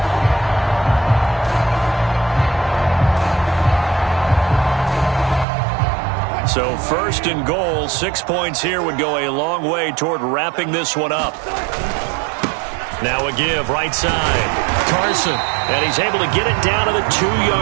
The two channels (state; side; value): drops out; left; at 5.5 s